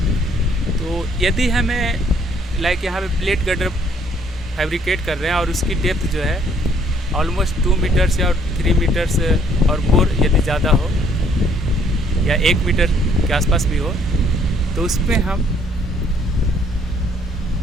तो यदि हमें लाइक यहाँ पे प्लेट गर्डर फैब्रिकेट कर रहे हैं और उसकी डेप्थ जो है ऑलमोस्ट 2 मीटर्स या 3 मीटर्स और मोर यदि ज़्यादा हो या 1 मीटर के आसपास भी हो, तो उसमें हम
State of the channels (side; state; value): both; normal; correlation 0.64